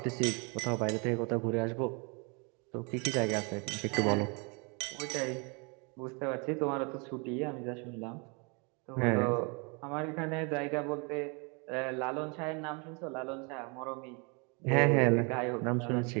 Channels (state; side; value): quieter; left; 32.5 dB